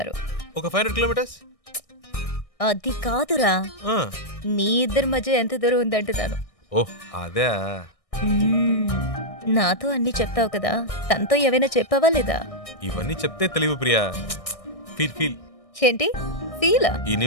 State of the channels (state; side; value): late; right; 1.6 ms